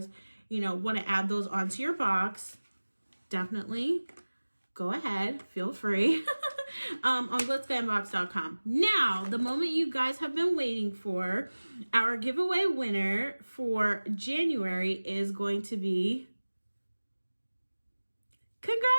want to add those onto your box, definitely go ahead. Feel free. On GlitzGlambox.com. Now, the moment you guys have been waiting for, our giveaway winner for January is going to be...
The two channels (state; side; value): inverted; both; correlation -1.00